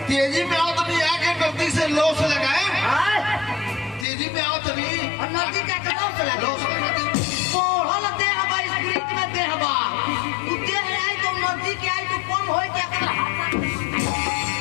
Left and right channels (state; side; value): drops out; right; at 4.0 s